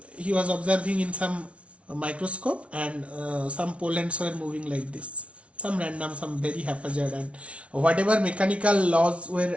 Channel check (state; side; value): late; left; 0.062 ms